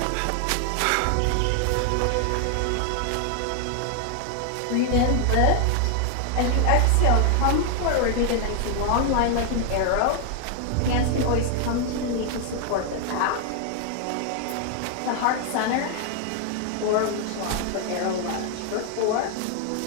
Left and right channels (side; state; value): both; different; correlation 0.00